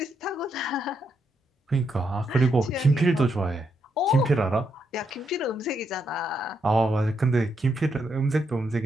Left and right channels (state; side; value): normal; both; correlation 0.79